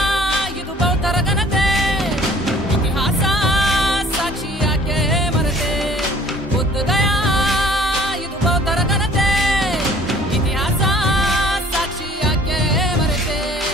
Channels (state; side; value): normal; both; correlation 0.53